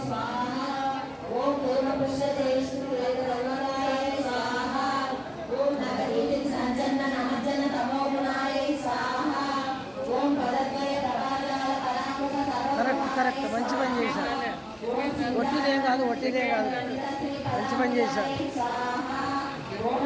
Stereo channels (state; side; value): identical; both; correlation 1.00